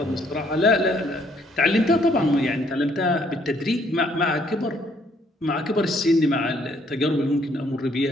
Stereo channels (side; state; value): both; normal; correlation 0.66